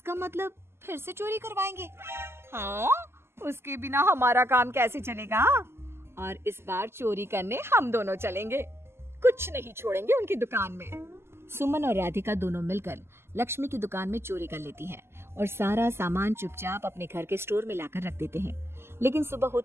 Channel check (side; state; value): left; late; 0.12 ms